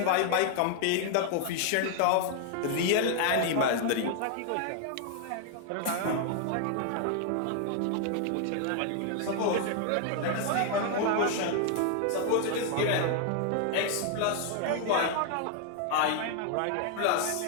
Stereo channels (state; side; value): different; both; correlation 0.00